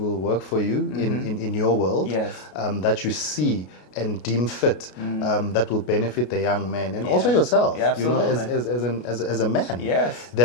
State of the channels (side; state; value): right; late; 33 ms